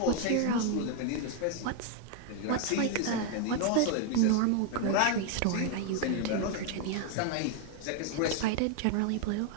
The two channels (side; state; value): both; different; correlation 0.00